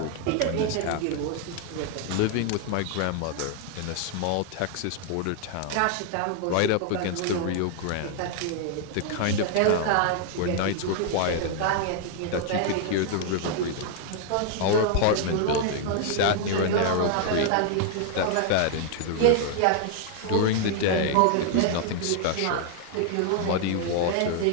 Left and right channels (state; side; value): different; both; correlation 0.00